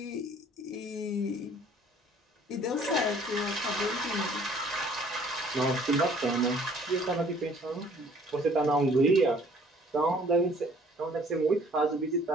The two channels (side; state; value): both; normal; correlation 0.56